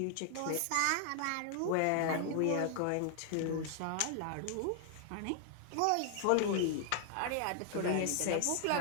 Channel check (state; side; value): different; both; correlation 0.00